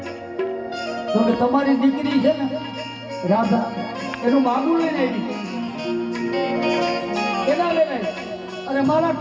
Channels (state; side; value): identical; both; correlation 1.00